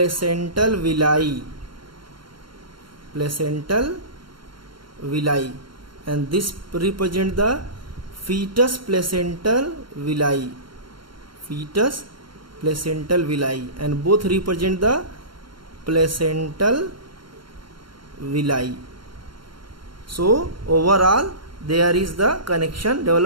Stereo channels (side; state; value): left; late; 0.73 ms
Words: villi. Placental villi, and this represents the fetus placental villi. Fetus placental villi, and both represent the placental villi. So overall there is the connection